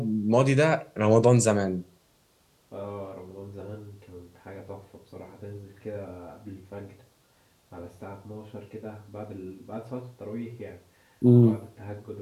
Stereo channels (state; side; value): identical; both; correlation 1.00